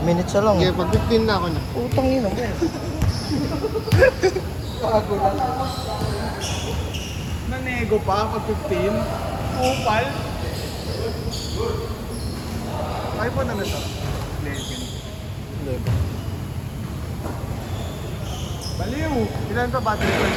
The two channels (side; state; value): both; identical; correlation 1.00